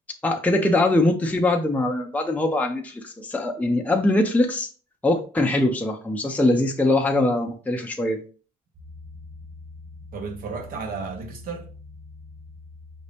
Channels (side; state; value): both; normal; correlation 0.74